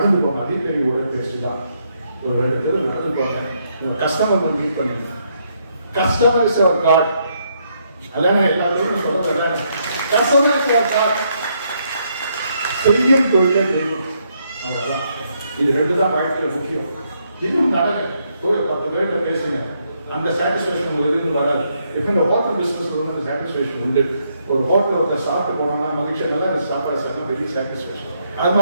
போங்க. அதே பெரிய உடற்பயிற்சி தான். ஒரு 2 பேர் நடந்து போங்க. கஸ்டமர் மீட் பண்ணுங்க. Customer is our god. அதானே எல்லாரும் சொல்றேன். Customer is our god. செய்யும் தொழிலே தெய்வம். அவ்வளவுதான். இது 2 தான் வாழ்க்கையில முக்கியம். இன்னும் நடங்க. போய் 10 பேர்கிட்ட பேசுங்க. அந்த சாட்டிஸ்பேக்ஷன் உங்களுக்கு இருந்து வராது. இப்போ இந்த ஹோட்டல் பிசினஸ்ல வந்து சாட்டிஸ்பேக்ஷன் உண்டு. ஒரு ஹோட்டல் ஒருத்தர் சாப்பிட்டு போனோம்னா மகிழ்ச்சியாக நல்லா சாப்பாடு சாப்பிட்டா பெரிய சாட்டிஸ்பேக்ஷன். அது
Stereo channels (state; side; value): inverted; both; correlation -0.75